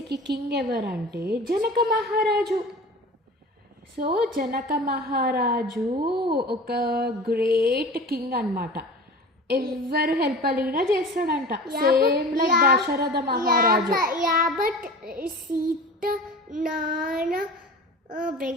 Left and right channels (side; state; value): both; normal; correlation 0.37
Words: కింగ్ ఎవరంటే జనక మహారాజు. సో జనక మహారాజు ఒక గ్రేట్ కింగ్ అన్నమాట. ఎవరు హెల్ప్ అడిగినా చేస్తాడంట, సేమ్ లైక్ దశరథ మహారాజు. బట్ సీత నాన్న